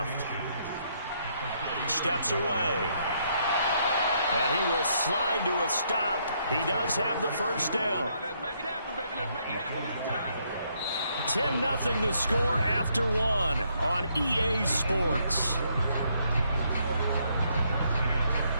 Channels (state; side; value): inverted; both; correlation -0.72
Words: Steps away. And he will slide to a stop. He does have the 1st down. 10-0 the score after 1 on EA Sports.